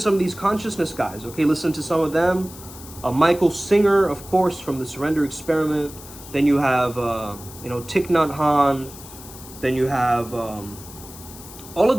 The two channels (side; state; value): left; noise; hiss, 17 dB below the sound